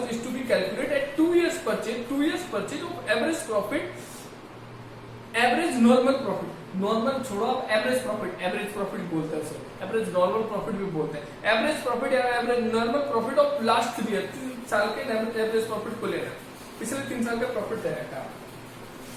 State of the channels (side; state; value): both; identical; correlation 1.00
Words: is to be calculate at 2 years purchase of average profit, average normal profit, normal छोड़ो आप एवरेज प्रॉफिट बोलते हैं उसे, एवरेज नॉर्मल प्रॉफिट भी बोलते हैं, एवरेज प्रॉफिट या average normal profit of last 3 years, 3 साल के एवरेज प्रॉफिट को लेना, पिछले 3 साल का प्रॉफिट दे रखा है।